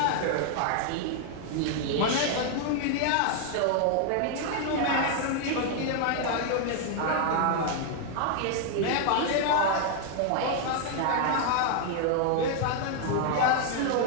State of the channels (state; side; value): different; both; correlation 0.00